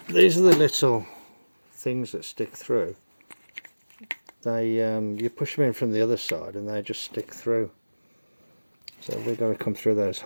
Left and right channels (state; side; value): inverted; both; correlation -1.00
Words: are the little things that stick through. They you push them in from the other side and they just stick through. So we've got to come through those